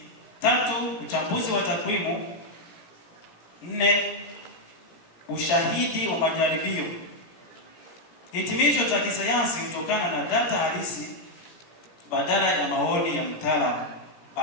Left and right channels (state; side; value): late; right; 17 ms